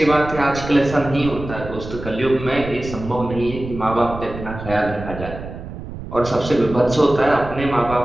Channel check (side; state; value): right; noise; rumble, 10 dB below the sound